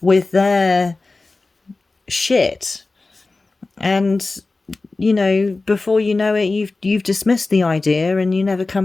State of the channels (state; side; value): quieter; right; 3.5 dB